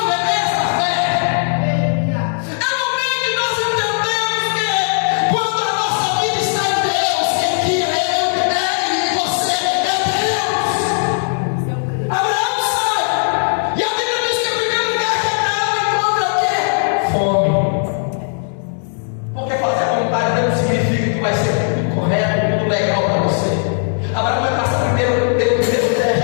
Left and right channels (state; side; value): silent; right; digital silence